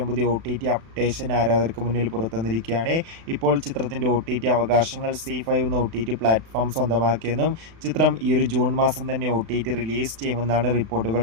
പുതിയ OTT അപ്ഡേഷൻ ആരാധകർക്ക് മുന്നിൽ പുറത്തുവന്നിരിക്കുകയാണ്. ഇപ്പോൾ ചിത്രത്തിൻ്റെ OTT അവകാശങ്ങൾ ZEE5 എന്ന OTT പ്ലാറ്റ്ഫോം സ്വന്തമാക്കിയെന്നും ചിത്രം ഈ ഒരു ജൂൺ മാസം തന്നെ OTT റിലീസ് ചെയ്യുമെന്നാണ്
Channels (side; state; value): left; late; 36 ms